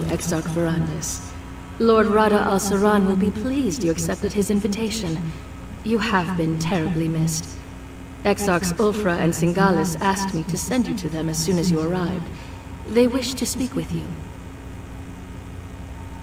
Exarch Verandis. Lord Rada al-Saran will be pleased you accepted his invitation. You have been terribly missed. Exarchs Ulfra and Singalis asked me to send you to them as soon as you arrived. They wish to speak with you.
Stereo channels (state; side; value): identical; both; correlation 1.00